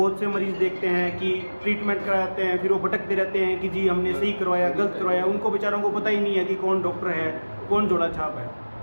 से मरीज़ देखते हैं कि ट्रीटमेंट कराते हैं, फिर वो भटकते रहते हैं कि जी हमने सही करवाया गलत करवाया। उनको बेचारों को पता ही नहीं है कि कौन डॉक्टर है कौन जोड़ा छाप है।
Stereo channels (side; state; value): both; inverted; correlation -1.00